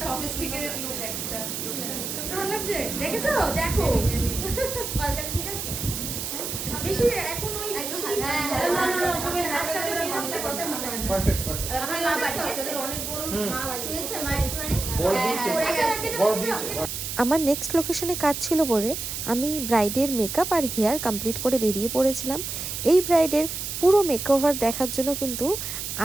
সফিস্টিকেটেড লুক একটা। চোখটা ভালো লাগছে? দেখেছো? দেখো কলকাতা ঠিক আছে? বেশি এখন ওই একটু বেশি- হ্যাঁ, না, না, না, ওসবের হাতটা হাতটা বের ভালো করতে লাগছে। কথা বলে। Perfect perfect. আমার মা পাঠিয়েছে। তাদের অনেক বড় মা বাড়ি। শুয়েছে মা একটুখানি? বড় হ্যাঁ, দিয়েছে। পড়ে আচ্ছা, গেছে। রাখি বড় দাও, দিয়েছে। রাখি দাও। আমার নেক্সট লোকেশনে কাজ ছিল বলে আমি ব্রাইডের মেকআপ আর হেয়ার কমপ্লিট করে বেরিয়ে পড়েছিলাম। এই ব্রাইডের পুরো মেকওভার দেখার জন্য কিন্তু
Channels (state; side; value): noise; right; hiss, 5 dB below the sound